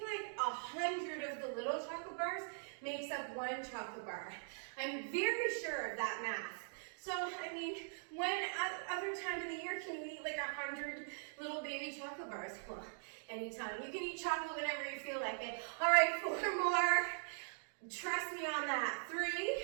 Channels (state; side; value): silent; left; digital silence